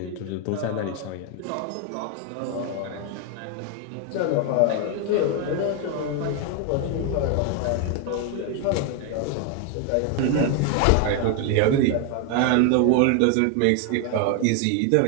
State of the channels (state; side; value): different; both; correlation 0.01